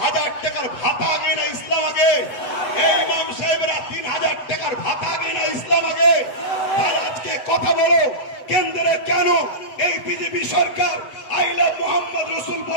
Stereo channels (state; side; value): late; right; 8.1 ms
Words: 1000 টাকার ভাতা আগে না ইসলাম আগে? এই ইমাম সাহেবরা 3000 টাকার ভাতা আগে না ইসলাম আগে? তাহলে আজকে কথা বলো, কেন্দ্রে কেন এই BJP Sarkar I love Mohammad রসুল